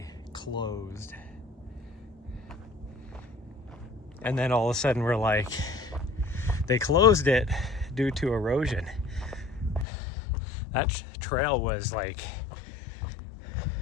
closed. And then all of a sudden we're like, they closed it due to erosion. That trail was like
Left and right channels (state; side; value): drops out; right; at 9.9 s